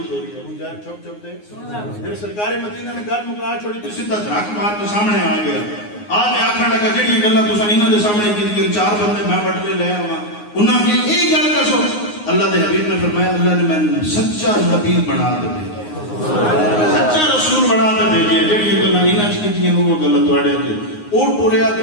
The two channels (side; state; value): right; late; 9.6 ms